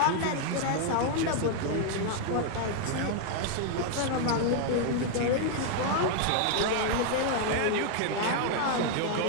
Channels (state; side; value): different; both; correlation 0.00